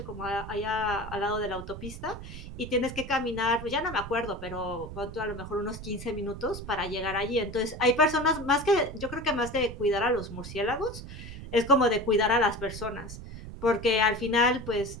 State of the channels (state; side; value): noise; right; rumble, 11 dB below the sound